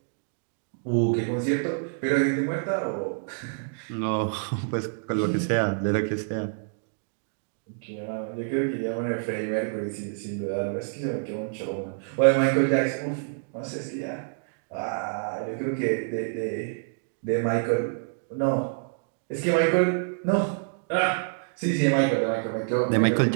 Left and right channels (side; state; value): left; silent; digital silence